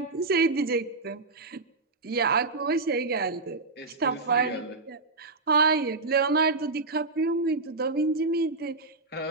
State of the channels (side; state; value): left; quieter; 3.6 dB